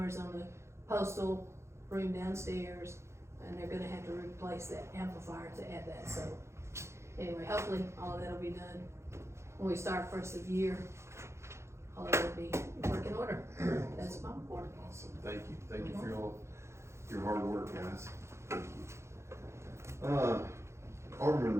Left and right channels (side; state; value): left; late; 0.13 ms